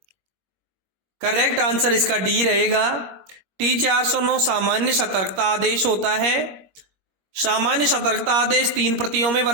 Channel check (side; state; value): left; late; 21 ms